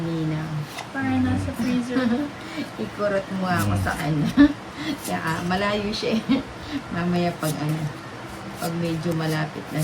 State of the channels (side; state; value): both; identical; correlation 1.00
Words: Parang nasa freezer. Ikurot mo ako sa kanya. Kaya malayo siya eh. Mamaya pag medyo malapit na